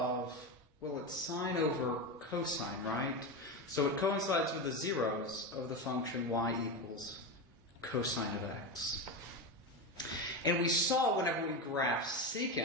well, it's sine over cosine, right? So it coincides with the zeros of the function y equals cosine of x. And we saw whenever we graphed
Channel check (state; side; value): normal; both; correlation 0.17